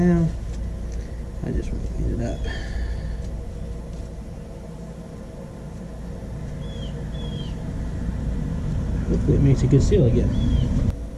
I just want to clean it up. Hopefully it makes a good seal again,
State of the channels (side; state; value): both; identical; correlation 1.00